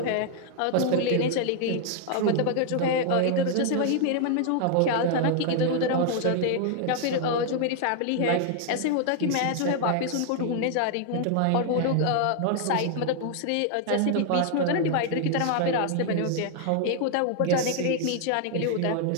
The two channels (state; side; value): different; both; correlation 0.00